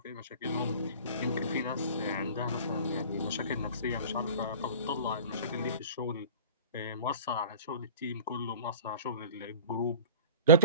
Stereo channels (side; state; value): both; inverted; correlation -0.39